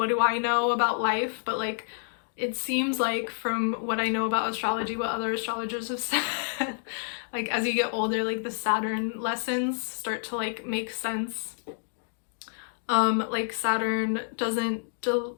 do I know about life, but like it seems like from what I know about astrology, what other astrologers have said, like as you get older, like the Saturn lessons start to like make sense. Like Saturn doesn't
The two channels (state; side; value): silent; right; digital silence